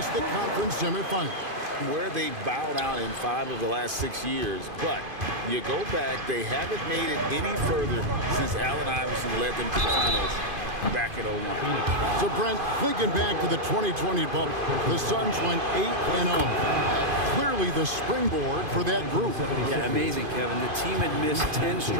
the conference semifinal. Where they bowed out in 5 of the last 6 years. But you go back, they haven't made it any further since Allen Iverson led them to the finals back at 01. So, Brent, thinking back to the 2020 bubble, the Suns went 8-0. Clearly the springboard for that group. Yeah, amazing, Kevin. The team had missed 10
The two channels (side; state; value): left; late; 2.5 ms